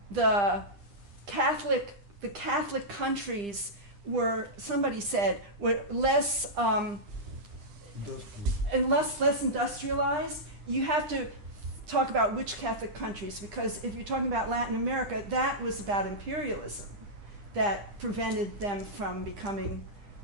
the Catholic countries were, somebody said, were less industrialized, you have to talk about which Catholic countries, because if you're talking about Latin America, that was about imperialism that prevented them from becoming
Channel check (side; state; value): left; late; 9.9 ms